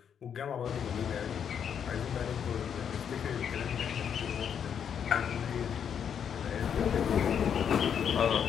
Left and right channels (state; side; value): quieter; right; 8.0 dB